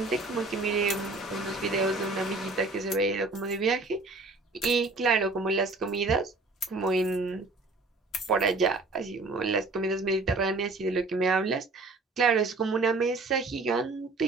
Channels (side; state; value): left; quieter; 3.4 dB